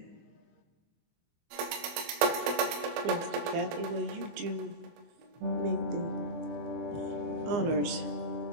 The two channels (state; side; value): late; left; 24 ms